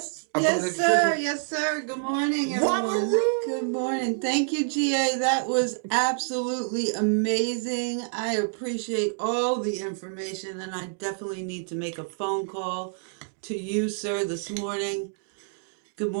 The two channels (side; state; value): left; silent; digital silence